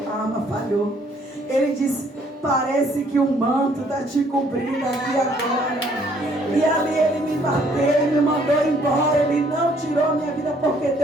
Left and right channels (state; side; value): normal; both; correlation 0.64